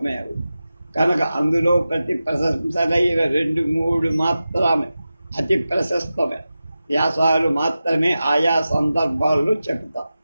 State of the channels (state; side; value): inverted; both; correlation -0.94